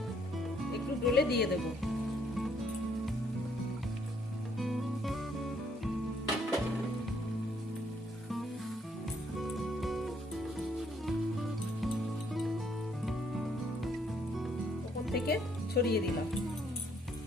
একটু ডলে দিয়ে দেব। ওপর থেকে ছড়িয়ে দিলাম।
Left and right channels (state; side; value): normal; both; correlation 0.68